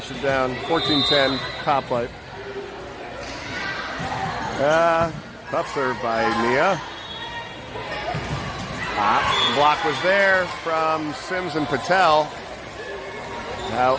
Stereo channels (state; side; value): identical; both; correlation 1.00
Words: it down. 14-10, top flight. Tough serve by Nia. Block was there from Sims and Patel.